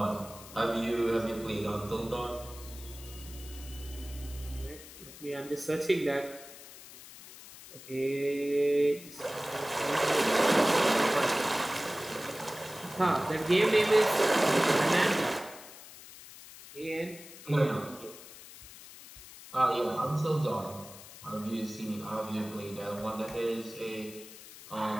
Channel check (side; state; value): left; noise; hiss, 17 dB below the sound